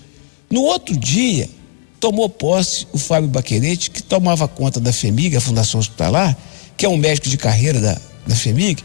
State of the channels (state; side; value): silent; right; digital silence